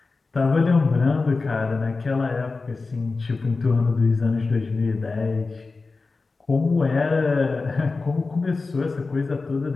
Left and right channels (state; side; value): quieter; right; 3.9 dB